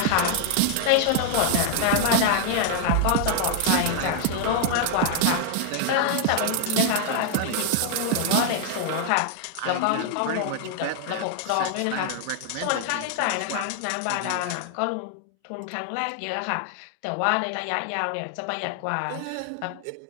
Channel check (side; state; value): both; different; correlation 0.00